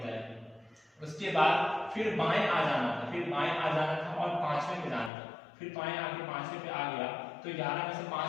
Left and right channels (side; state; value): right; drops out; at 5.1 s